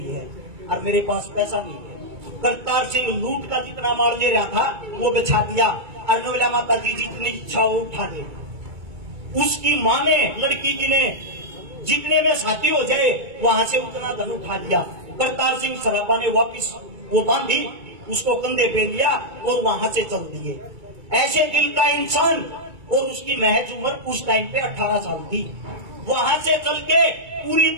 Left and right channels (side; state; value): left; late; 2.3 ms